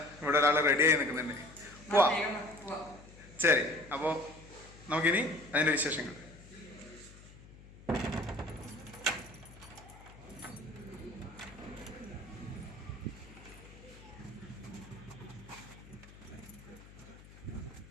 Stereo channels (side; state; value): left; noise; hum, 19 dB below the sound